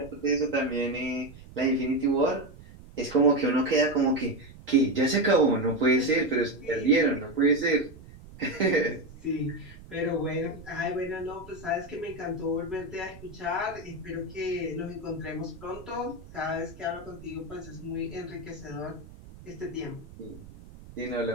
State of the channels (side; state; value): right; noise; rumble, 18 dB below the sound